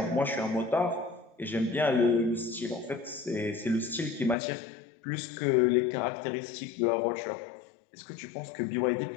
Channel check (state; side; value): drops out; right; at 4.4 s